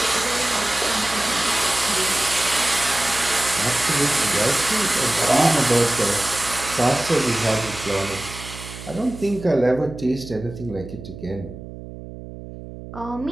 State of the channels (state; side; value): noise; right; hum, 13 dB below the sound